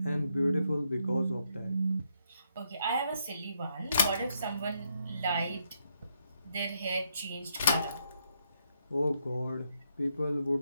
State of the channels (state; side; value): inverted; both; correlation -0.77